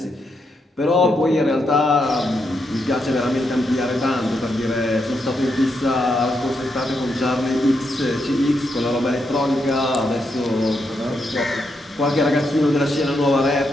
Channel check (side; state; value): both; normal; correlation 0.81